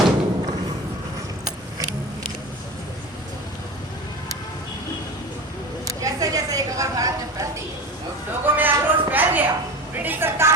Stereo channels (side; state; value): both; normal; correlation 0.31